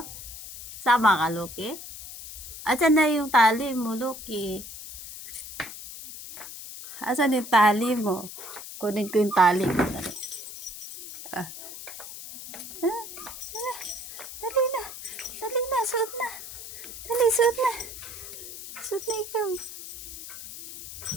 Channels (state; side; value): noise; left; hiss, 12 dB below the sound